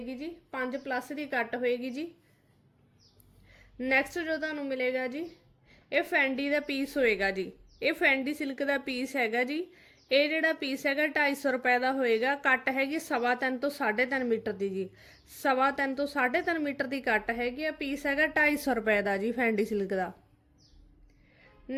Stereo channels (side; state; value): both; identical; correlation 1.00